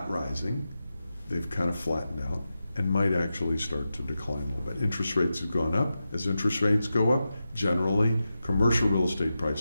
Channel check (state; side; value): inverted; both; correlation -0.91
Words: rising. They've kind of flattened out and might actually start to decline a little bit. Interest rates have gone up. As interest rates go up, generally commercial real estate